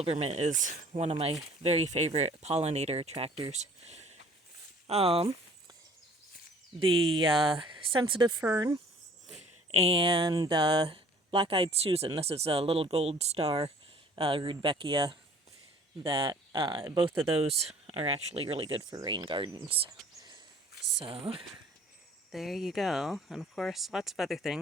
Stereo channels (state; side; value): normal; both; correlation 0.52